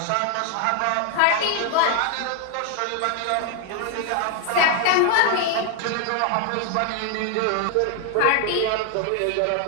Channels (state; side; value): different; both; correlation 0.00